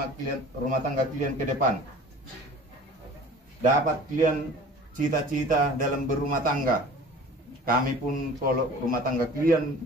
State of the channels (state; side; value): normal; both; correlation 0.44